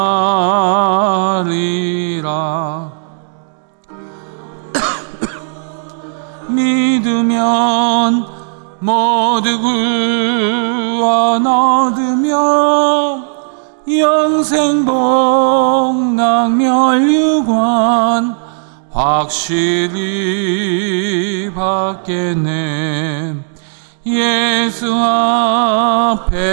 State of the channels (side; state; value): left; silent; 68 dB below the other